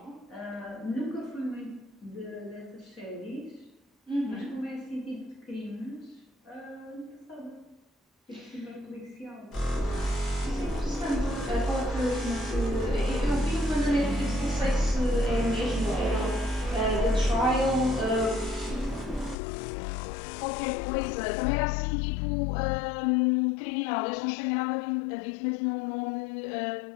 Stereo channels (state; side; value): drops out; right; at 19.4 s